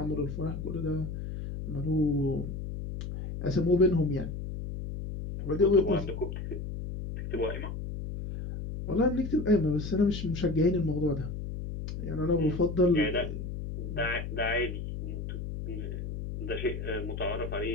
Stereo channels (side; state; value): left; noise; hum, 6 dB below the sound